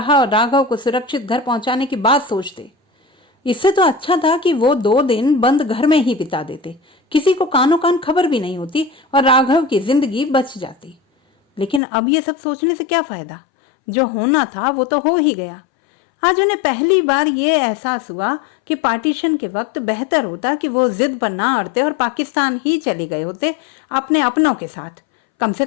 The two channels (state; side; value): drops out; right; at 11.8 s